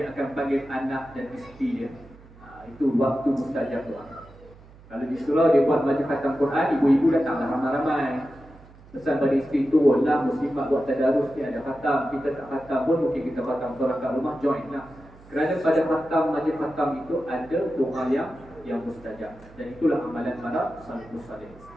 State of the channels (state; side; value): noise; right; hum, 23 dB below the sound